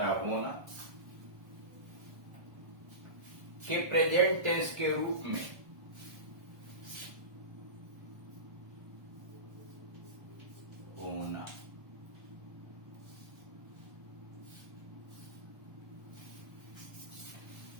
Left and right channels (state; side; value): late; left; 1.3 ms